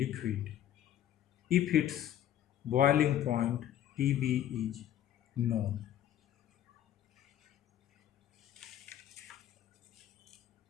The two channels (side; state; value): right; quieter; 11.3 dB